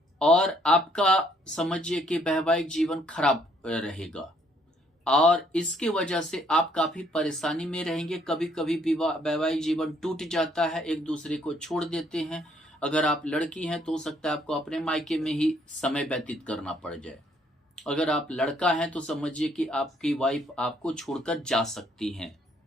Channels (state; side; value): normal; both; correlation 0.66